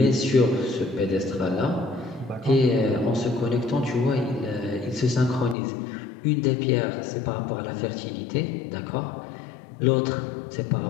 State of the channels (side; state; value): right; drops out; at 5.6 s